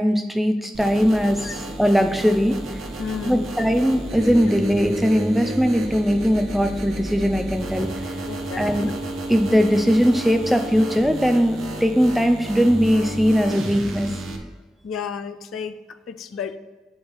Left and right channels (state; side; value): normal; both; correlation 0.95